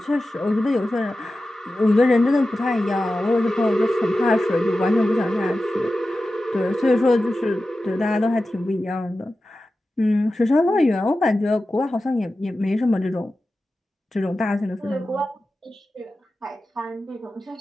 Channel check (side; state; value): both; normal; correlation 0.94